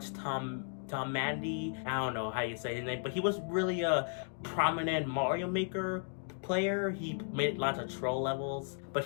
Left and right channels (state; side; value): silent; right; 54 dB below the other